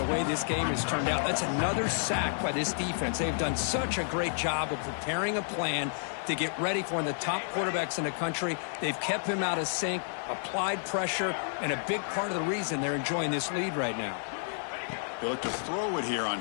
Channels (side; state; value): right; silent; 56 dB below the other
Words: way this game has turned out. That's another sack by this defense. They've done such a great job of preparing a plan to get ready for one of the top quarterbacks in the country. They've kept him out of sync, applied pressure, and a big part of the reason they're enjoying this lead right now. They look to throw it here on